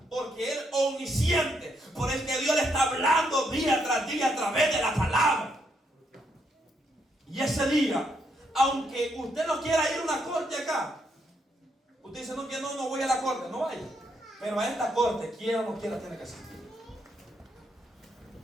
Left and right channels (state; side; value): normal; both; correlation 0.76